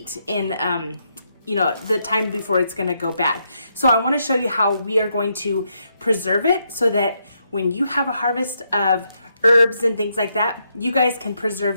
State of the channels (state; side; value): inverted; both; correlation -0.79